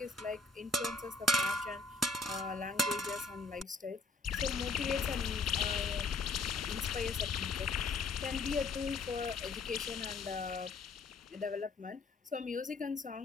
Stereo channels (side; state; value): right; quieter; 4.0 dB